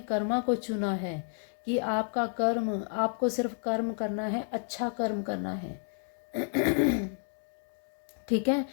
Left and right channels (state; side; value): silent; right; digital silence